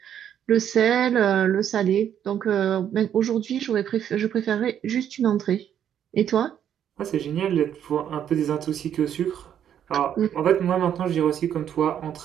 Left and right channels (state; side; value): quieter; left; 9.6 dB